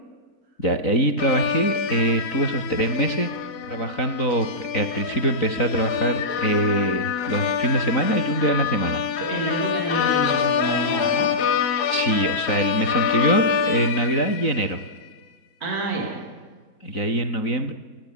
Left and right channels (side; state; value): right; late; 4.0 ms